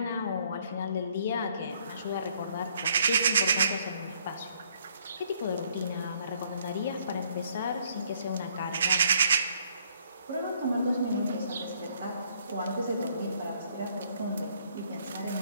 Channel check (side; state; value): both; inverted; correlation -0.66